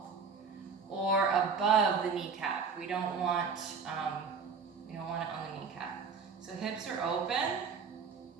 or above the kneecap. We don't want it on the kneecap. So hips are open.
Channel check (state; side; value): quieter; left; 5.5 dB